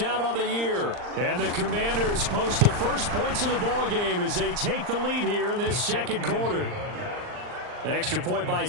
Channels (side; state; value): left; late; 39 ms